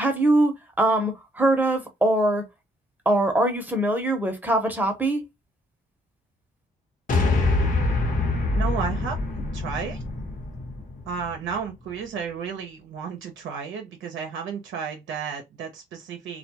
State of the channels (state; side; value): normal; both; correlation 0.66